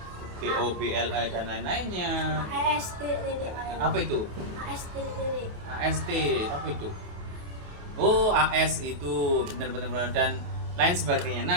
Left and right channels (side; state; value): left; late; 28 ms